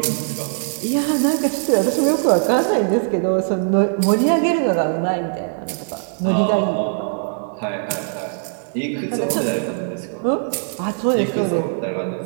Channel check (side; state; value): left; silent; digital silence